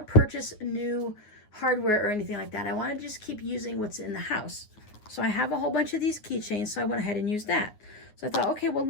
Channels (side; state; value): right; late; 9.5 ms